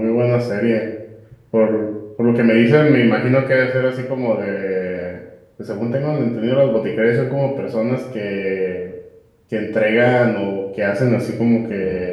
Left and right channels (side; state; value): both; identical; correlation 1.00